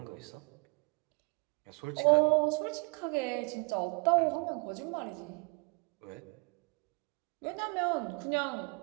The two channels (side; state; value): left; quieter; 32.9 dB